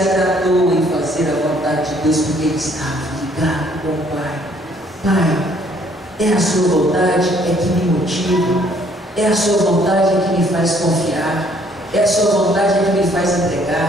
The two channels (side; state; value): both; normal; correlation 0.63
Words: em fazer a vontade de Deus, porque ele estava ligado com o Pai. Pai, é a sua vontade é que me motiva, é a sua vontade é que me faz confiar, é a sua vontade é que me faz